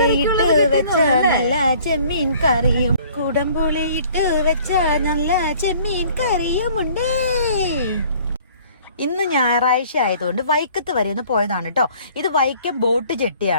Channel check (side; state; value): both; inverted; correlation -0.54